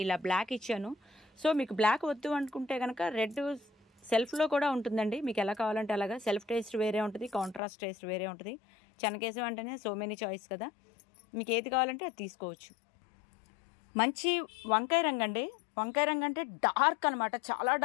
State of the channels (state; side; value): drops out; right; at 7.6 s